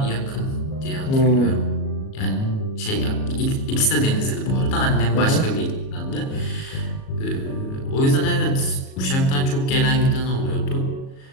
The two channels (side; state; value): right; late; 37 ms